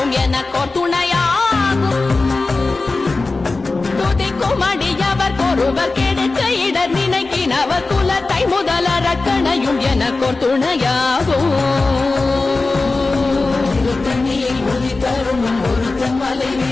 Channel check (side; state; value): right; quieter; 3.6 dB